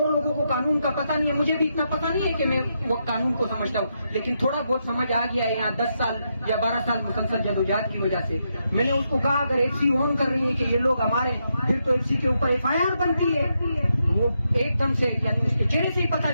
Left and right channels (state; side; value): inverted; both; correlation -0.82